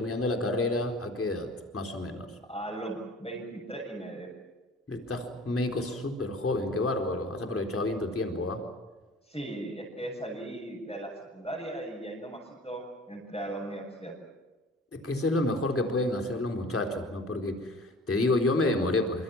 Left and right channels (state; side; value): normal; both; correlation 0.45